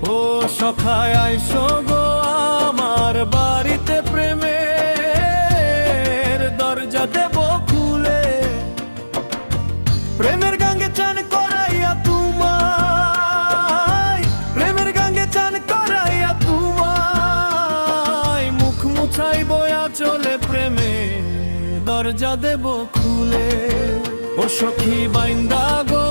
ও সখায় আইসো গো আমার বাড়িতে প্রেমে দরজা দেব খুলে। প্রেমের গাঙ্গে চান করাইয়া তোমায়, প্রেমের গাঙ্গে চান করাইয়া তোমায় মুখ মুছাই বয়া চলে প্রেমে দরজা দেব খুলে। ও সখী বাইন্দা গো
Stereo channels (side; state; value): both; inverted; correlation -1.00